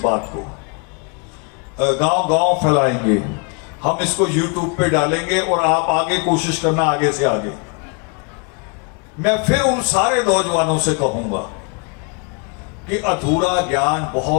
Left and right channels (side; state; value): right; quieter; 34.2 dB